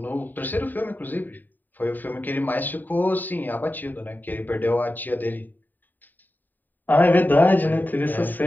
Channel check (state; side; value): late; right; 0.089 ms